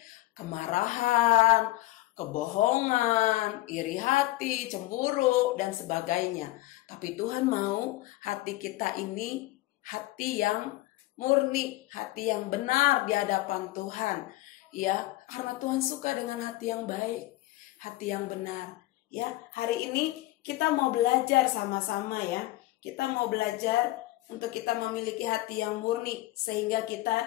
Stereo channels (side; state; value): right; quieter; 18.0 dB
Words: kemarahan, kebohongan, iri hati, cemburu, dan sebagainya. Tapi Tuhan mau hati kita ini hati yang murni, hati yang benar di hadapan Tuhan. Ya, karena Tuhan suka dengan hati yang baik, hati yang benar. Ya, hari ini kita mau belajar sama-sama ya. Kita mau belajar untuk kita memiliki hati yang murni sehingga